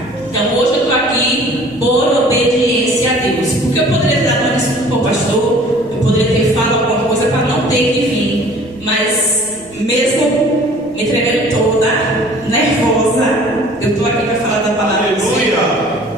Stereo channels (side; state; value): right; noise; rumble, 25 dB below the sound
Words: Então hoje eu estou aqui por obediência a Deus. Porque eu poderia ter dado uma desculpa para o pastor, eu poderia ter falado alguma coisa para não ter que vir. Mas mesmo me tremendo toda, nervosa, eu estou aqui para falar da palavra do Senhor.